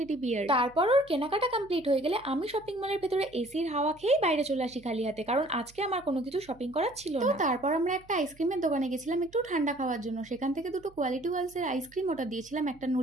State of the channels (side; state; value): right; noise; hum, 26 dB below the sound